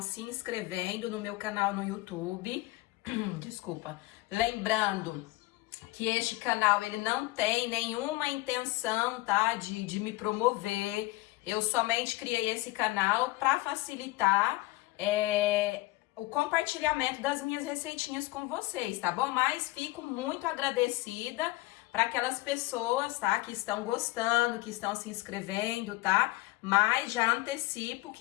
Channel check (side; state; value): right; quieter; 20.1 dB